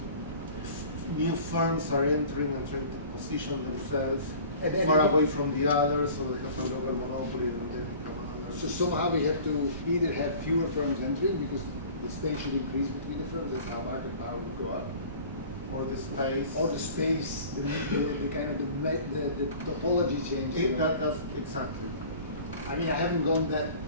new firms are entering and trying to position themselves far away from the others, so they have a local monopoly and then become others. So somehow we have to either have fewer firms entering because the space should increase between the firms, that's how market power would go up. Or the space. Or the space, the kind of the topology change. That's exactly. I mean, I haven't gone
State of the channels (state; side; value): inverted; both; correlation -0.44